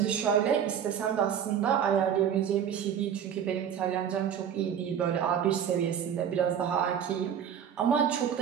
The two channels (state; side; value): quieter; left; 8.5 dB